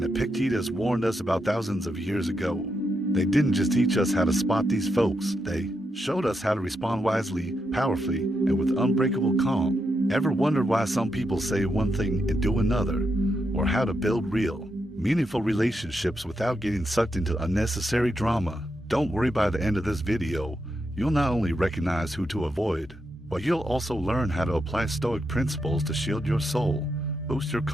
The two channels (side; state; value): both; normal; correlation 0.83